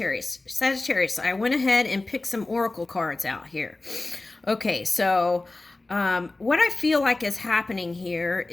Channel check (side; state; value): right; quieter; 3.1 dB